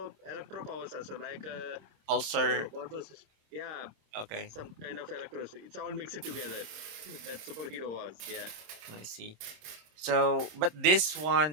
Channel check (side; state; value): left; late; 27 ms